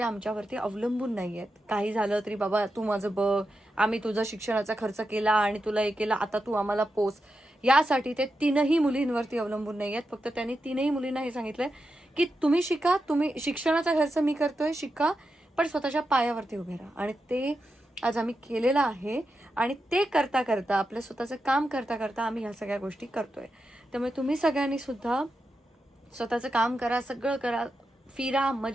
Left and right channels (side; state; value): both; normal; correlation 0.88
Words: आमच्यावरती अवलंबून नाही आहेत. काही झालं तरी बाबा तू माझं बघ, आम्ही तुझा शिक्षणाचा खर्च केला आणि तुला हे केला, आता तू आम्हाला पोस. यासाठी ते 3ही मुलींवरती अवलंबून नाही आहेत. फक्त त्यांनी 3ही मुलींना हे सांगितलंय की तुम्ही शिका, तुम्ही शिक्षणाचा खर्च मी करतोय, शिका, पण स्वतःच्या पायावरती उभे राहा. आणि ते आज आम्ही केलेलं आहे. आणि ते करता करता, आपलं स्वतःचं काम करता करता आम्ही ह्या सगळ्या गोष्टी करतोय. त्यामुळे तुम्ही सगळ्यांनी सुद्धा स्वतःचं काम करा, सगळं करा, फिरा,